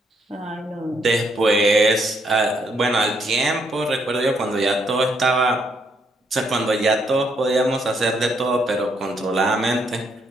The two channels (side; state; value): both; normal; correlation 0.73